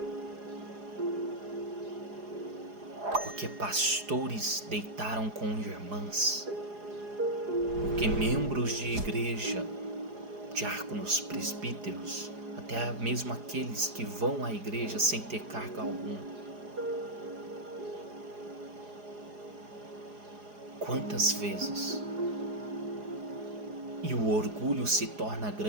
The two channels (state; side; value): late; left; 4.8 ms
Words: Porque pastores deitaram com irmãs, porque membros de igreja, diáconos, presbíteros, até mesmo aqueles que vão à igreja sem ter cargo algum. Quantas vezes? E o orgulho se torna